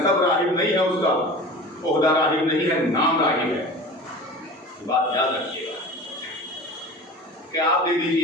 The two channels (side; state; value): both; normal; correlation 0.37